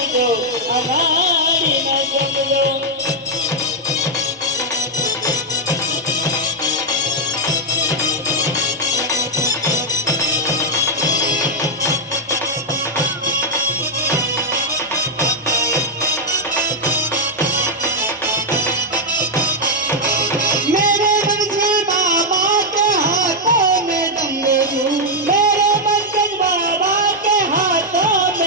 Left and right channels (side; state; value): both; normal; correlation -0.01